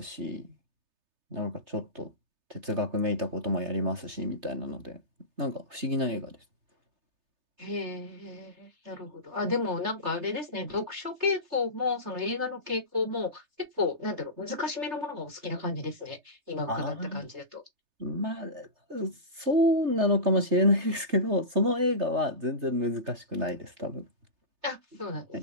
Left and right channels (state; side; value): late; left; 3.3 ms